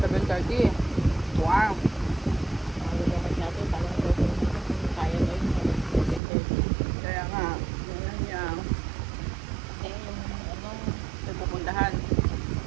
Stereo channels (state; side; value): drops out; left; at 6.2 s